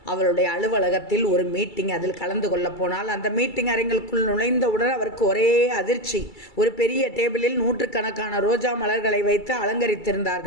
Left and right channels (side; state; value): right; late; 2.3 ms